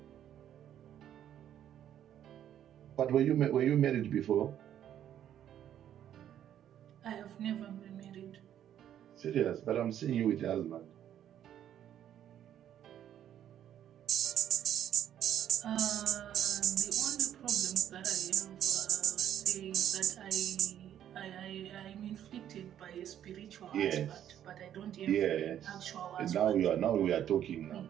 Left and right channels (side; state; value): left; quieter; 10.5 dB